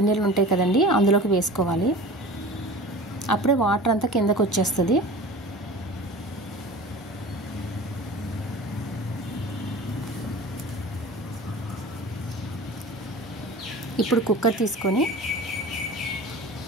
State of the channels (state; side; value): normal; both; correlation 0.37